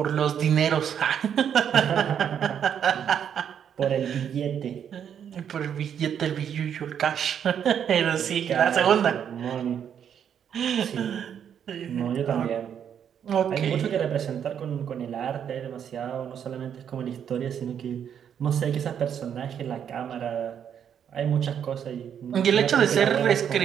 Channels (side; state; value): left; quieter; 8.5 dB